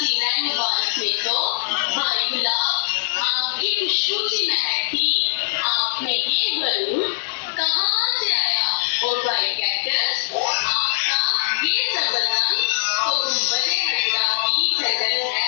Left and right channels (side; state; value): right; silent; digital silence